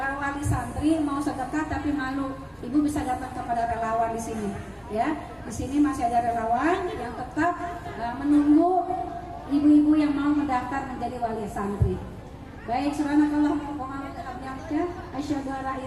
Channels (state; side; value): identical; both; correlation 1.00